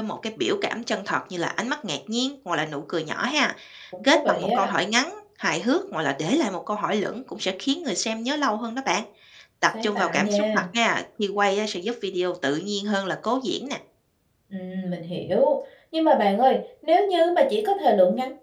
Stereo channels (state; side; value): identical; both; correlation 1.00